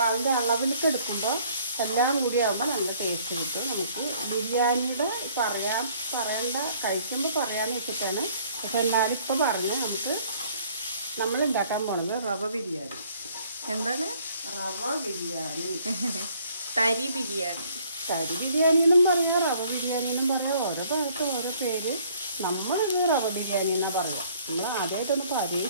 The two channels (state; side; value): inverted; both; correlation -0.59